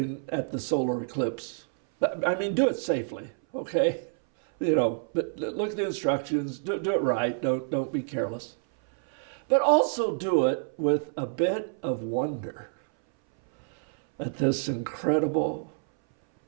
at the solar eclipse, I mean, do it safely, okay? But look at the instructions, do it right, don't be careless. But also do it with a bit of wonder at this incredible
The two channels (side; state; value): left; silent; 59 dB below the other